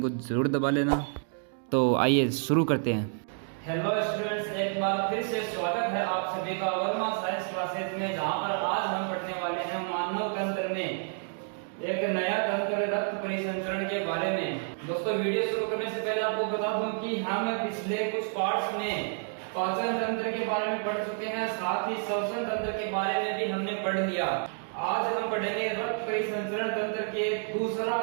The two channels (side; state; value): left; silent; 58 dB below the other